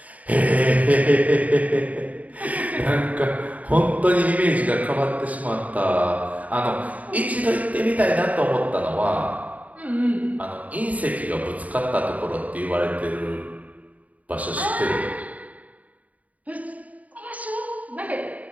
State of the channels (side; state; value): left; late; 0.072 ms